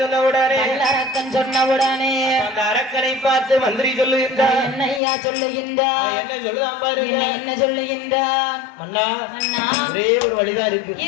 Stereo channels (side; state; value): right; drops out; at 5.0 s